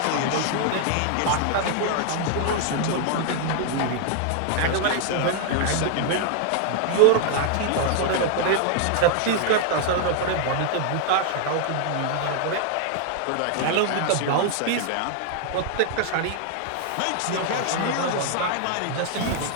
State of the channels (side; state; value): both; different; correlation 0.00